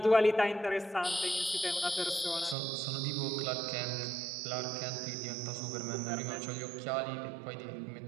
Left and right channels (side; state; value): left; drops out; at 2.6 s